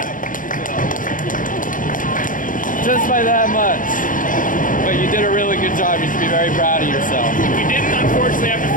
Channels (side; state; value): right; late; 0.39 ms